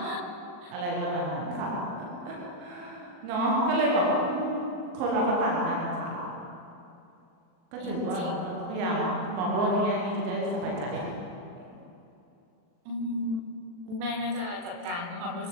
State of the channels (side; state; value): left; late; 40 ms